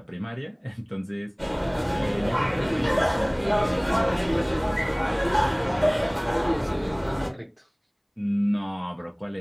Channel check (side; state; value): both; identical; correlation 1.00